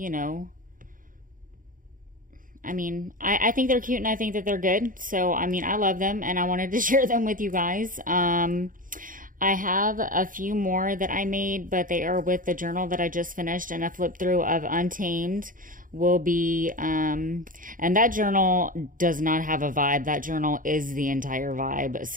I think they're cute and I think that they're good. So, I love them and I wanted to share them with you guys. I have a few more that I made, but they are with the journal that I just finished, and a flip through of Untamed will be, and that journal does not have a vibe. That journal is the entire vibe.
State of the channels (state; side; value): late; left; 0.39 ms